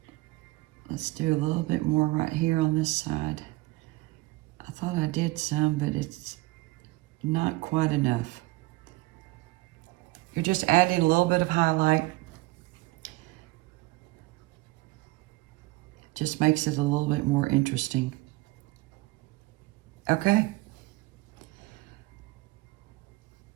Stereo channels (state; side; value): quieter; left; 21.1 dB